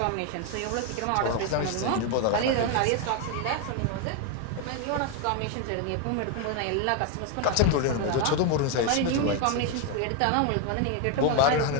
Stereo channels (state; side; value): different; both; correlation 0.01